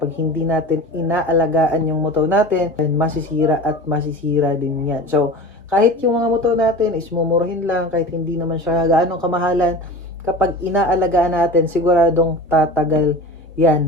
hindi natin inaalagaan yung motor natin, masisira at masisira din yan. So, kahit yung mga motor natin is mumurahin lang, kahit hindi naman siya gaanong kamahalan, kapag inaalagaan natin, siguradong tatagal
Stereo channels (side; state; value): both; normal; correlation 0.34